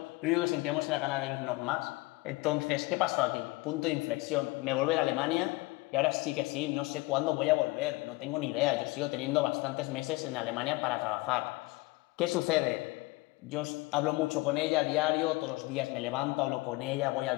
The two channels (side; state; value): right; quieter; 22.8 dB